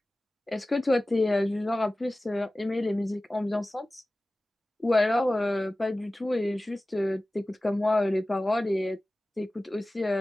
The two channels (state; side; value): normal; both; correlation 0.97